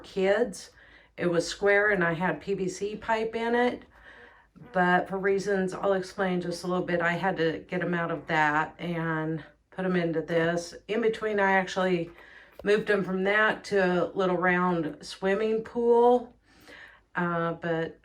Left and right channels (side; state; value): both; identical; correlation 1.00